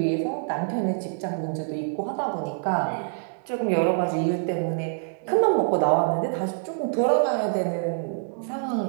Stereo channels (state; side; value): silent; left; digital silence